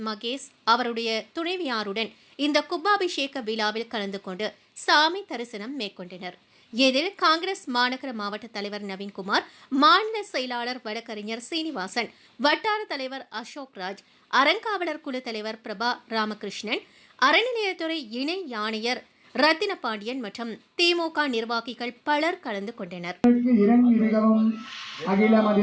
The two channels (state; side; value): identical; both; correlation 1.00